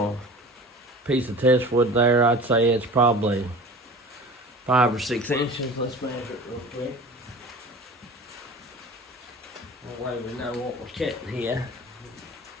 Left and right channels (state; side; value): normal; both; correlation 0.39